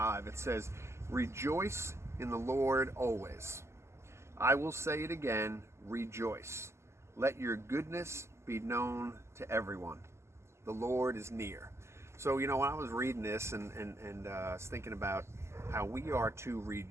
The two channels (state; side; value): late; left; 0.13 ms